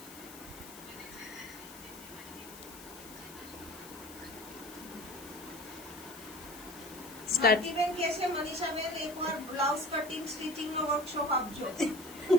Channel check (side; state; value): left; noise; hiss, 16 dB below the sound